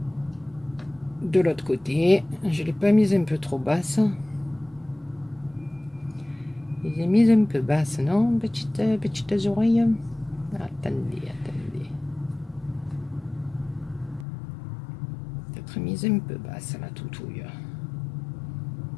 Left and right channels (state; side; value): drops out; right; at 14.2 s